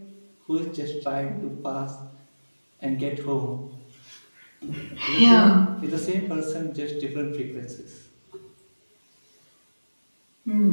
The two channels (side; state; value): both; inverted; correlation -1.00